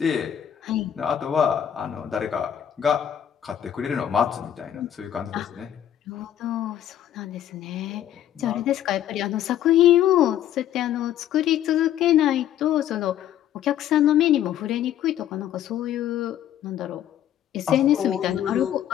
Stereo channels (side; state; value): right; quieter; 10.8 dB